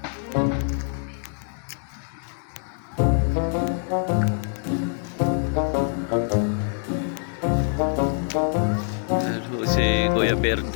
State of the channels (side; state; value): right; silent; 56 dB below the other